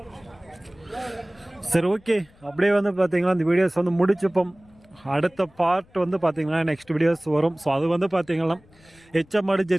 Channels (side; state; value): left; noise; rumble, 29 dB below the sound